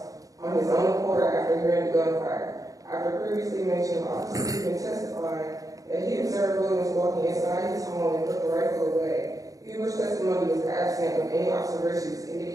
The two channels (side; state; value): left; late; 0.17 ms